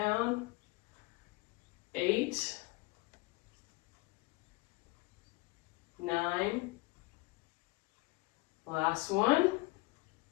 8, 9, last one,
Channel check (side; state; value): right; quieter; 23.0 dB